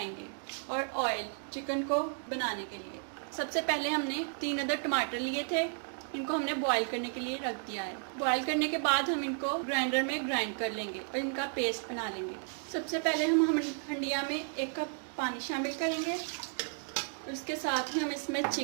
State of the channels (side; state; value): left; silent; 56 dB below the other